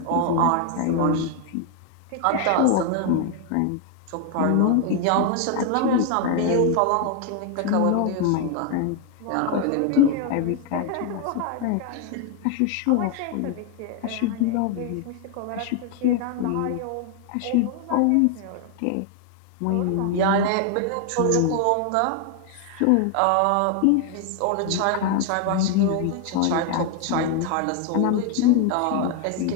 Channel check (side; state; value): both; different; correlation 0.00